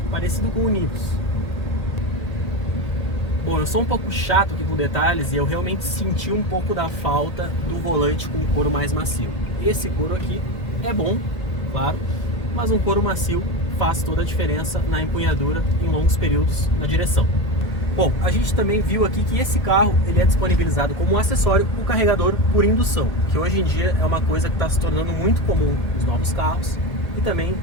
parecido com o Nivus. Bom, eu sou um pouco chato aqui com detalhes e eu realmente senti um pouco da falta do volante com couro mais macio. Esse couro aqui é bom, claro, mas um couro macio faz toda a diferença na empunhadura em longos períodos na direção. Bom, a gente também viu aqui que esse carro ele é disponibilizado como acessório o carregador por indução, que hoje em dia é uma coisa que está se tornando muito comum nos novos carros e também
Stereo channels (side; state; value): right; late; 2.1 ms